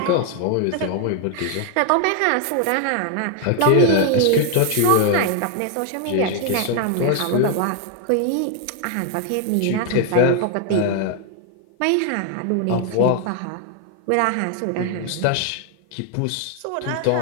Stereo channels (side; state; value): both; different; correlation 0.00